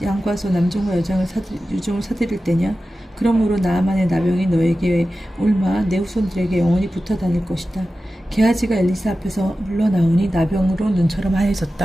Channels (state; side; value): normal; both; correlation 0.94